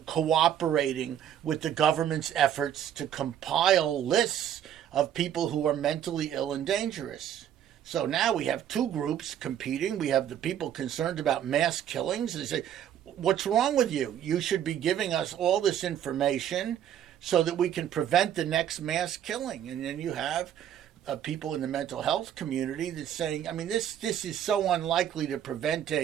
cooperating with the government's efforts to compile lists of people who are mentally ill and dangerous. So now we have two groups competing. We have the people concerned about mass killings. They say, what's wrong with you? You should be giving us all this information so that we can prevent the next mass killing. And then you have people in the mental health community that's saying, this is so unlikely to prevent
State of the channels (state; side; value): quieter; left; 10.1 dB